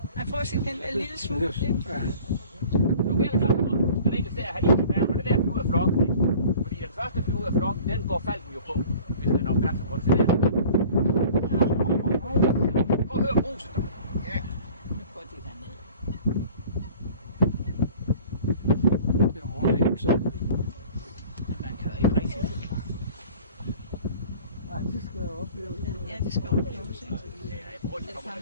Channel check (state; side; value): inverted; both; correlation -0.46